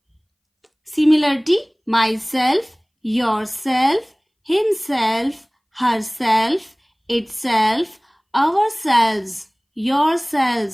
similarity: myself, yourself, himself, herself, itself, ourselves,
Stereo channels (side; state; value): both; identical; correlation 1.00